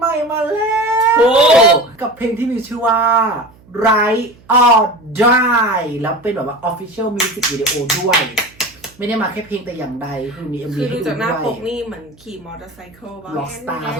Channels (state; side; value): noise; right; hum, 27 dB below the sound